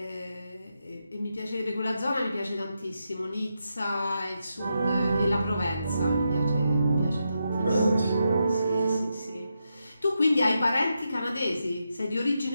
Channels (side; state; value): both; inverted; correlation -0.85